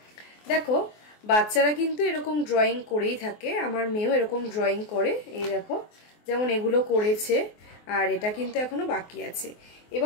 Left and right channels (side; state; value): right; late; 24 ms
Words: দেখো, বাচ্চারা কিন্তু এরকম ড্রয়িং করেই থাকে, আমার মেয়েও এরকম ড্রয়িং করে। এই দেখো, যেমন এগুলো করেছে আর এটা কিন্তু এখনো বাকি আছে।